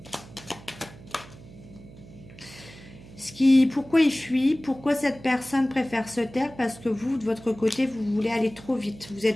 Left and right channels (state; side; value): noise; right; hum, 19 dB below the sound